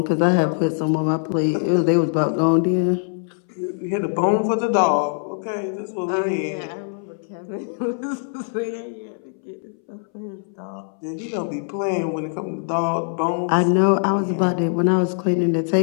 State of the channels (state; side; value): silent; right; 63 dB below the other